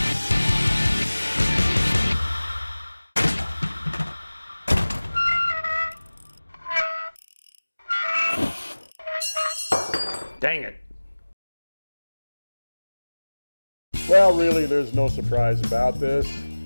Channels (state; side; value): inverted; both; correlation -1.00